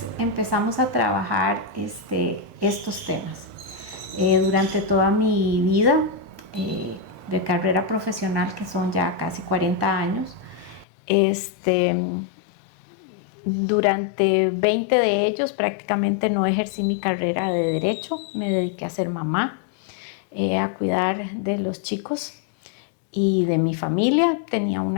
empezamos a trabajar estos temas. Durante toda mi vida de carrera profesional, que son ya casi 40 años, durante 20 de ellos prácticamente no ejercí mi carrera de derecho, me dediqué a ser mamá, a cuidar de los chicos y de mi familia. Tenía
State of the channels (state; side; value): drops out; right; at 10.9 s